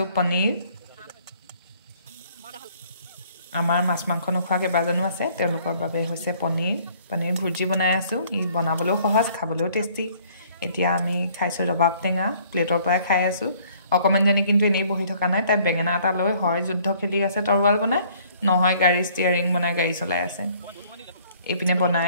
পনীৰ আমাৰ মাছ মাংস নোখোৱা কেইবাজনো আছে তেওঁলোকৰ বাবে হৈছে পনীৰ ভুজি বনাই আছো ই বনাবলৈও সহজ খাবলৈও টেষ্টি এতিয়া আমি খাইছো ৰবাব টেঙা প্লেটৰ পৰাই খাই আছো অকমানজনী কিন্তু এনেই বহি থকা নাই তাই বেঙেনা এটা লৈ হয় যুদ্ধ খেলি আছে তৰৱাল বনাই নহয় গাড়ী ষ্টিয়াৰিং বনাই গাড়ী চলাই আছে এপিনে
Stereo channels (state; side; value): inverted; both; correlation -0.59